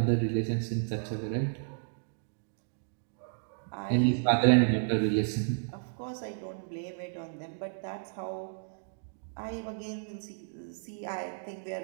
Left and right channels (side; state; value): left; silent; digital silence